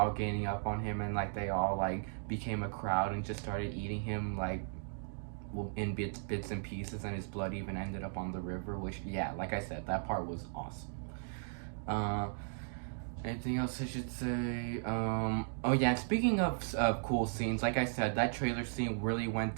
gaining up on him and like they all like became a crowd and just started eating him like in bits and pieces, and his blood even ended up on the river. Which yeah, like I said, that part was awesome. Uh, Anything else I should say? Oh yeah, and speaking of cool scenes, like I said, that trailer scene really went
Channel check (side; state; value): left; silent; digital silence